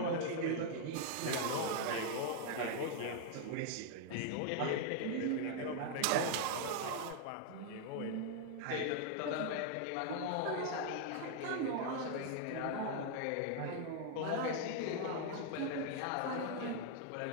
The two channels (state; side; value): different; both; correlation 0.00